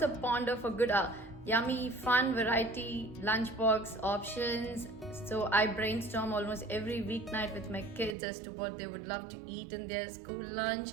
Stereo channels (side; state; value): left; drops out; at 8.2 s